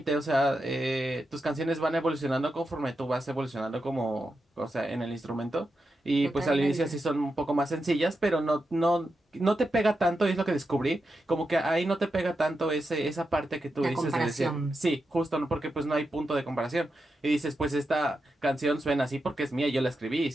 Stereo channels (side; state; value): both; normal; correlation 0.88